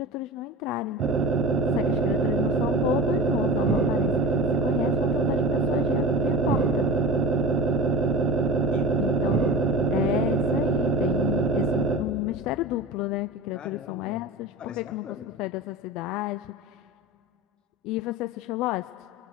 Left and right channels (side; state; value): both; normal; correlation 0.31